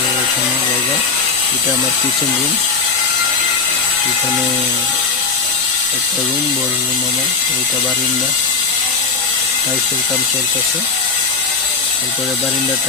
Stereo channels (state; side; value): quieter; right; 4.7 dB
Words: এখানে জায়গা। এটা আমার কিচেন রুম। এখানে একটা রুম, বড় রুম আমার। ওইটা বারিন্দা, টাইলসের কাম চলতেছে। তারপরে বারিন্দা